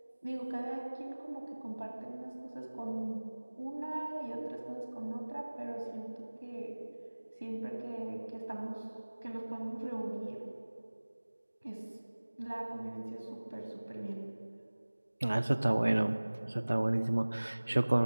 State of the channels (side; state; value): both; inverted; correlation -1.00